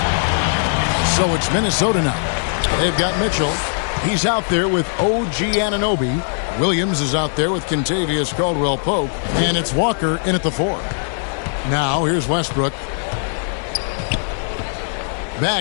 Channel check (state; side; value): silent; right; 66 dB below the other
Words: So it's Minnesota now. They've got Mitchell. He's out there with OG Anunoby. Williams is out there with Kentavious Caldwell-Pope. And it's Walker in at the 4. Now here's Westbrook.